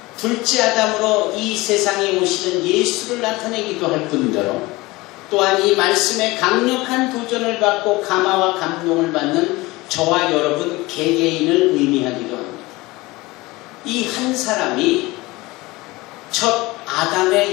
둘째 아담으로 이 세상에 오시는 예수를 나타내기도 할 뿐더러 또한 이 말씀에 강력한 도전을 받고 감화와 감동을 받는 저와 여러분 개개인을 의미하기도 합니다. 이 한 사람이 첫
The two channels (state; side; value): quieter; right; 21.3 dB